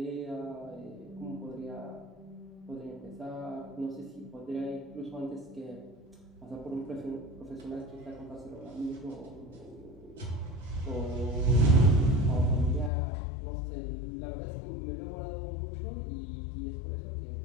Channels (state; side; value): drops out; right; at 12.9 s